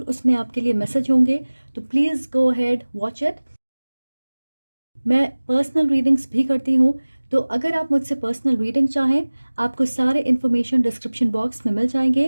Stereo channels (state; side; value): inverted; both; correlation -1.00